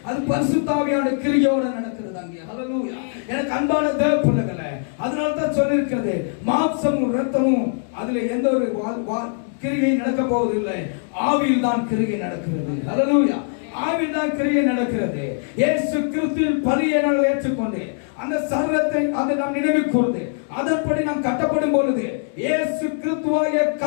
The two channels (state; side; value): silent; right; digital silence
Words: அது பரிசுத்த ஆவியானவருடைய கிரியையோட நடக்கிறது அங்கே. ஹல்லேலூயா. எனக்கு அன்பான தேவப்பிள்ளைகளே, அதனால தான் சொல்லியிருக்கிறது, மாம்சமும் இரத்தமும் அதுல எந்த ஒரு கிரியை நடக்க போவதில்லை. ஆவியில் தான் கிரியை நடக்கிறது. ஹல்லேலூயா. ஆவியில் தான் கிரியை நடக்கிறது. இயேசு கிறிஸ்துவின் பலியை நாங்கள் ஏற்றுக்கொண்டு அந்த சரீரத்தை அதை நாம் நினைவு கூர்ந்து அதன்படி நாம் கட்டப்படும் பொழுது இயேசு கிறிஸ்துவாகிய